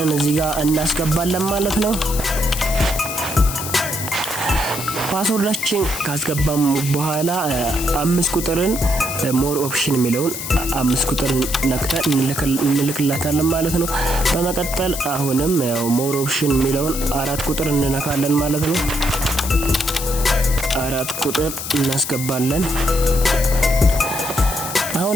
እዚህ ጋር እናስገባለን ማለት ነው። ፓስወርዳችን ካስገባም በኋላ 5 ቁጥርን ሞር ኦፕሽን የሚለውን 5 ቁጥርን ነክተን እንልክላታለን ማለት ነው። በመቀጠል አሁንም ያው ሞር ኦፕሽን የሚለውን 4 ቁጥር እንነካለን ማለት ነው። 4 ቁጥር እናስገባለን።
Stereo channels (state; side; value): noise; left; hiss, 6 dB below the sound